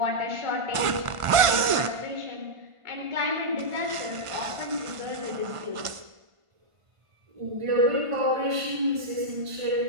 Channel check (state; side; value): late; left; 1.5 ms